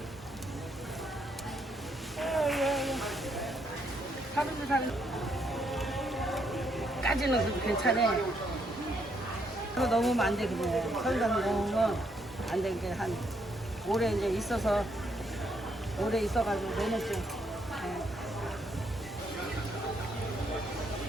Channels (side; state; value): both; normal; correlation 0.74